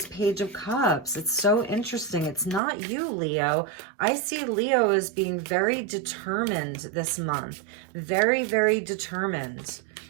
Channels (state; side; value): drops out; left; at 2.6 s